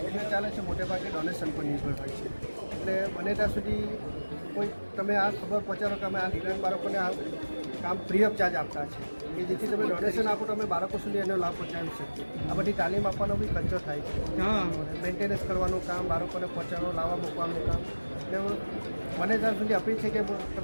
ચાલે છે મોટે ભાગે ડોનેશન પર નિર્ભર હોય છે. એટલે બને ત્યાં સુધી કોઈ તમે આ ખબર પહોંચાડો કે અમે આ દિવ્યાંગ બાળકોને આ કામ ફ્રી ઓફ ચાર્જ આપતા છે કે જેથી તમે ડોનેશન આપો તો અમે બાળકો સુધી એનો લાભ પહોંચાડી શકીએ. આ બધી તાલીમ આપવાનો બી ખર્ચો થાય છે. મેન્ટેનન્સ કરવાનું કામ, બાળકોને પહોંચાડો લાવવા મૂકવાનું કામ. એટલે મને ત્યાં સુધી અપીલ છે કે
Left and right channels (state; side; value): inverted; both; correlation -1.00